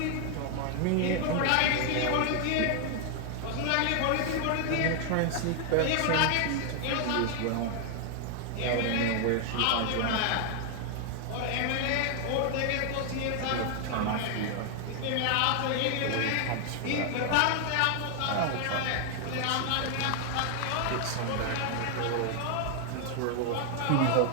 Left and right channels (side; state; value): both; different; correlation 0.00